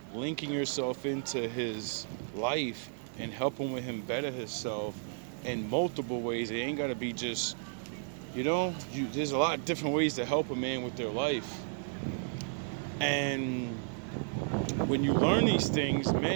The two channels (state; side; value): silent; left; digital silence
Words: linking yourself into his life and helping with him better himself in multiple ways, it ain't got to be just, there's a lot of different ways to help a man with their life. And when you learn these things,